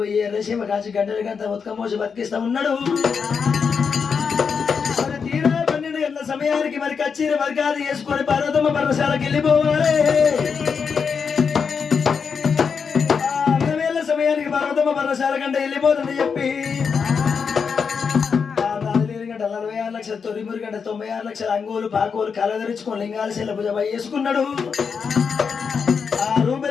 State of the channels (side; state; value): right; quieter; 6.0 dB